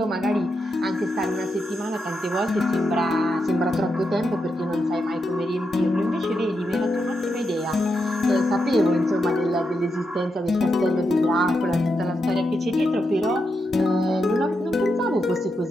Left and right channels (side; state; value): both; normal; correlation 0.84